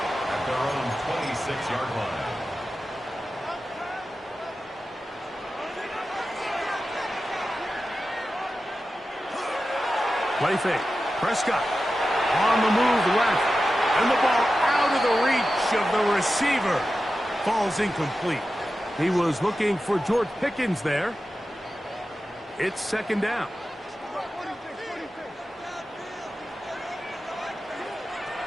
at their own 26-yard line. Play fake. Prescott on the move left. And the ball out of the reach of the receiver. Falls incomplete. He was looking for George Pickens there. It's second down.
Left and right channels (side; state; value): both; normal; correlation 0.93